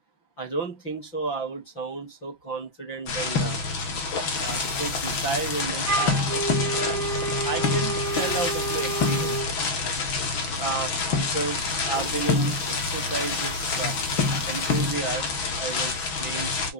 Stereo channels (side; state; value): right; late; 6.1 ms